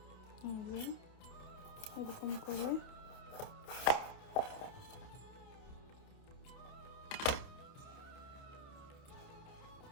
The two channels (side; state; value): right; late; 28 ms